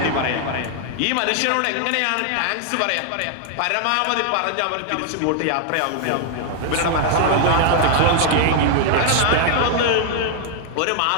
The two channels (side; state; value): both; different; correlation 0.00